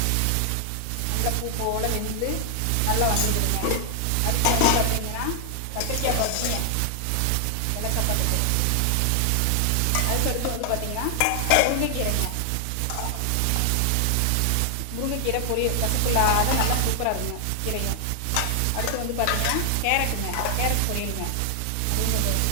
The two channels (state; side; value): different; both; correlation 0.00